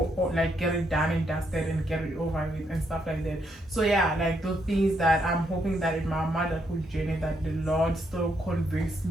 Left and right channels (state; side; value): normal; both; correlation 0.76